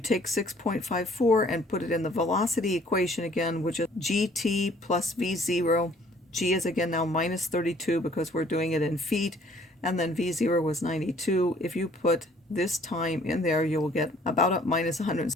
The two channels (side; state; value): both; normal; correlation 0.58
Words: 6.54 and put it in the velocity equation again, which is gt plus v0. G is again now minus 32 because we're doing it in feet, and then v0 was 92. If you put this time in there, you will get about a minus